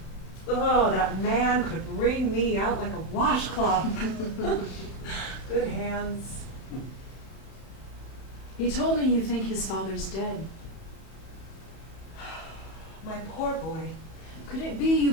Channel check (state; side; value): late; right; 31 ms